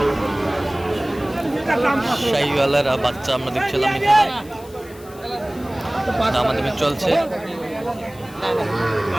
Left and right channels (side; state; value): left; noise; hiss, 22 dB below the sound